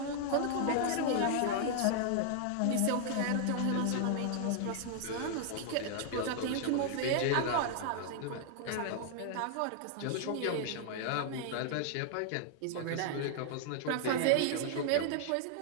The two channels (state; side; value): different; both; correlation 0.00